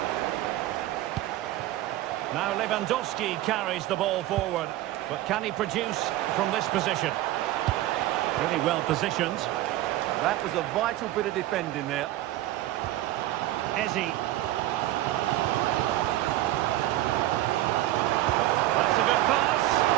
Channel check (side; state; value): left; quieter; 15.2 dB